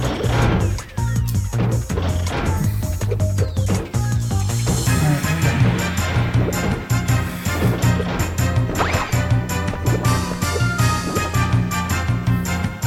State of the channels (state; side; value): identical; both; correlation 1.00